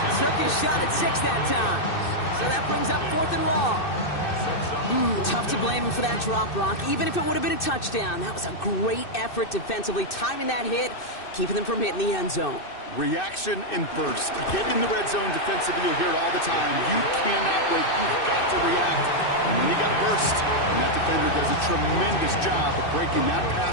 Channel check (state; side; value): late; right; 2.6 ms